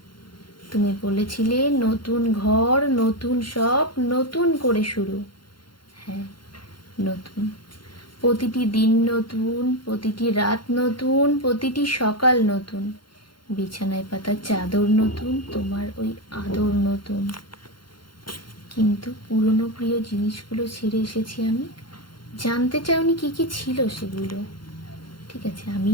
তুমি বলেছিলে নতুন ঘর, নতুন সব, নতুন করে শুরু। হ্যাঁ, নতুন। প্রতিটি দিন নতুন, প্রতিটি রাত নতুন, প্রতিটি সকাল নতুন। বিছানায় পাতা চাদর নতুন, তোমার ওই আদর নতুন। কিন্তু পুরনো প্রিয় জিনিসগুলো ছেড়ে এসেছি আমি। জানতে চাওনি কি কি ছিল সেগুলো? ঠিক আছে,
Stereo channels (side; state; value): right; late; 0.72 ms